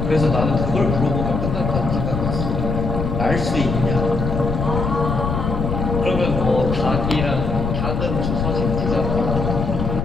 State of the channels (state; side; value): noise; left; rumble, 2 dB below the sound